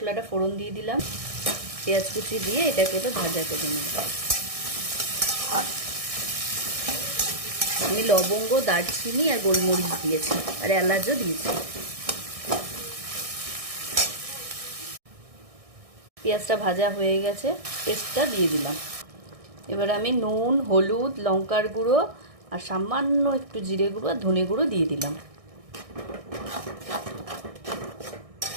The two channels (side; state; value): left; late; 1.6 ms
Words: ফোড়ন দিয়ে দিলাম, পেঁয়াজ কুচি দিয়ে এটাকে তো ভাজা করে নেব। আমি লবঙ্গ, দারচিনি আর গোলমরিচ দিয়েছি আর এলাচও দিয়েছি। পেঁয়াজটা ভাজা হয়ে গেছে, পেস্টটা দিয়ে দিলাম। এবার আমি নুন, হলুদ, লঙ্কার গুঁড়ো আর সামান্য একটু জিরে গুঁড়ো আর ধনে গুঁড়ো দিয়ে দিলাম।